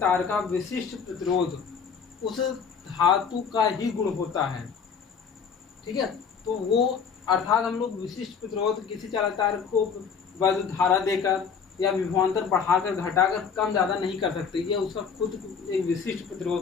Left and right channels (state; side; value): quieter; right; 6.3 dB